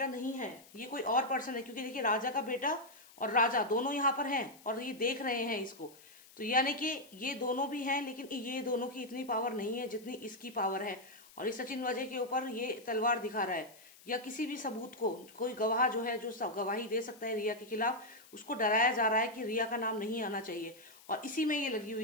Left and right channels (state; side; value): noise; left; hiss, 23 dB below the sound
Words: नहीं है, ये कोई और पर्सन है। क्योंकि देखिए राजा का बेटा और राजा दोनों यहाँ पर हैं और ये देख रहे हैं इसको। तो यानी कि ये दोनों भी हैं, लेकिन ये दोनों की इतनी पावर नहीं है जितनी इसकी पावर है। और इस सचिन वाजे के ऊपर ये तलवार दिखा रहा है, या किसी भी सबूत को, कोई गवाह जो है, जो गवाही दे सकता है रिया के खिलाफ, उसको डराया जा रहा है कि रिया का नाम नहीं आना चाहिए। और इसी में ये लगी